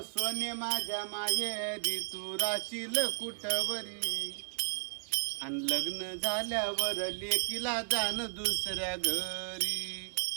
सोने माझ्या माहेरी तू राशील कुठवरी. अन लग्न झाल्यावर लेकीला जाण दुसऱ्या घरी.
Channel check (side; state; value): left; silent; digital silence